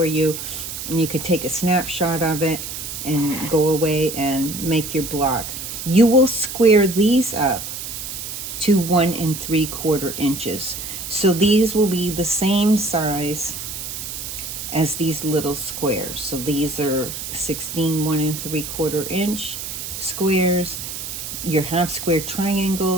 you, and you can take a snapshot of it and go away and make your block. You will square these up to 1 3/4 inches. So these will be the same size as these little squares. So these are 16 1 3/4 inch squares. Your half square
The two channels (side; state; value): right; noise; hiss, 7 dB below the sound